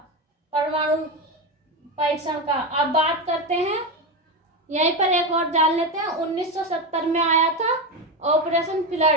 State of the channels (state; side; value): normal; both; correlation 0.14